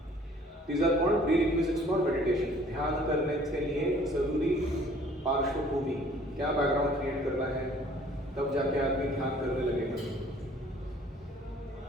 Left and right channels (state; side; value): normal; both; correlation 0.55